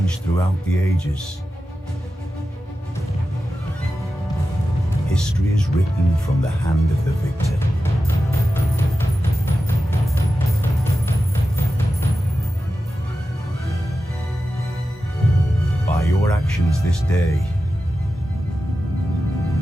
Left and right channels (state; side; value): normal; both; correlation 0.92